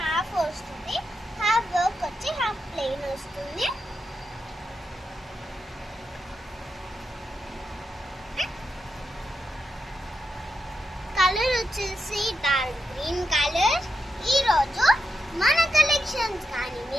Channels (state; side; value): normal; both; correlation 0.86